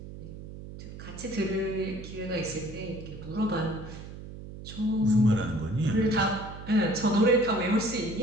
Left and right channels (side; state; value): right; noise; hum, 12 dB below the sound